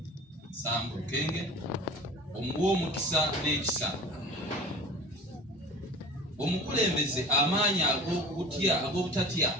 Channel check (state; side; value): normal; both; correlation 0.39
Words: Sambu Lukenge, omuwa omukisa n'ekisa, omukulembeze amaanyi ag'obutatya,